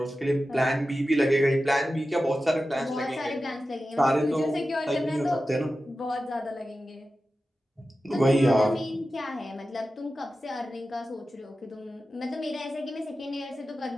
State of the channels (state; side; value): normal; both; correlation 0.93